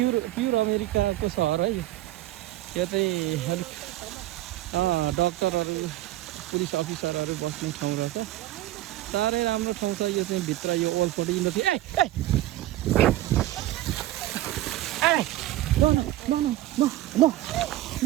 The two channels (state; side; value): quieter; left; 15.1 dB